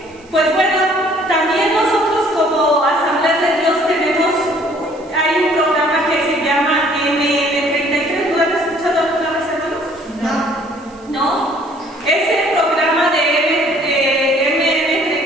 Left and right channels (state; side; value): noise; right; hiss, 29 dB below the sound